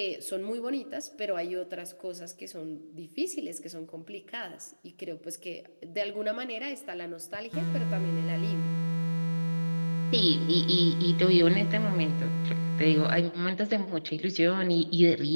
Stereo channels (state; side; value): inverted; both; correlation -1.00